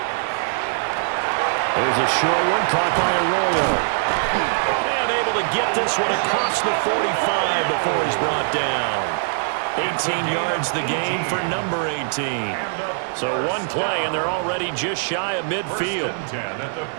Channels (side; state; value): left; silent; digital silence